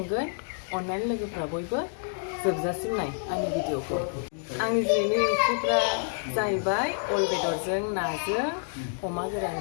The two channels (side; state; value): right; silent; digital silence